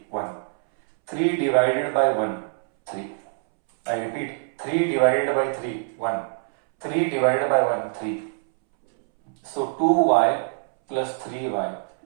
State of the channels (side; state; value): left; silent; 63 dB below the other